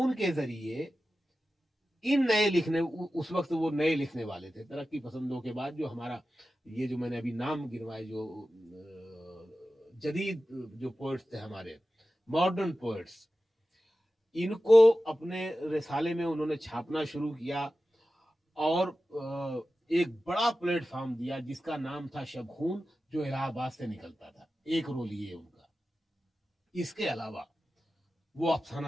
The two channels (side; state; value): both; normal; correlation 0.94